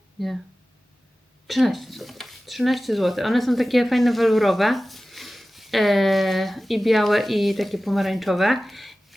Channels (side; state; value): both; normal; correlation 0.96